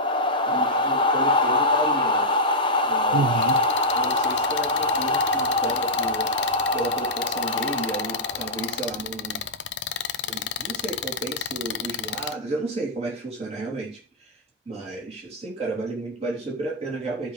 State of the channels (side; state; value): both; normal; correlation -0.07